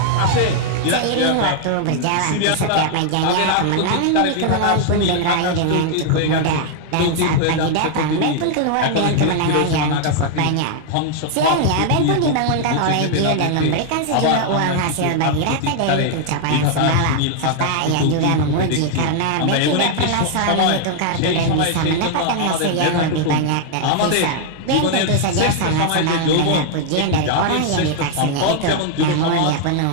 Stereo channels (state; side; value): different; both; correlation 0.00